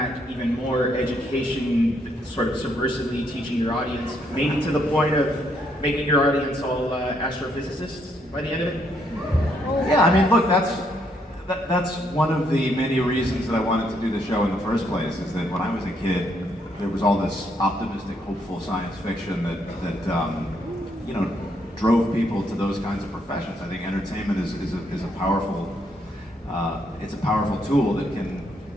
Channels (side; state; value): both; normal; correlation 0.73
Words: even more education, sort of subversively teaching your audience, maybe to the point of making your audience all astrophysicists by the end of it? Yeah, I mean, look, that's one of the many reasons that I wanted to do the show in the first place, is that when I was a kid, there was all this optimistic, hopeful science fiction that you know, drove people to those kinds of professions. I think entertainment is a powerful, it's a powerful tool that can